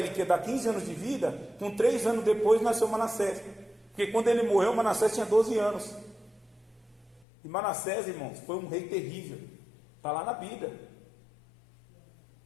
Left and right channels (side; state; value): right; drops out; at 7.2 s